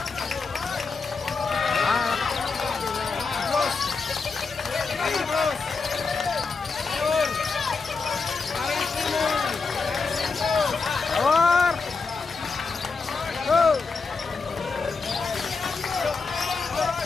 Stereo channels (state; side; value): quieter; right; 4.6 dB